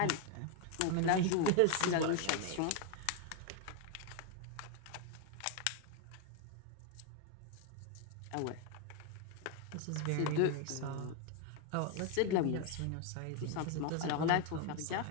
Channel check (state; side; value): different; both; correlation 0.01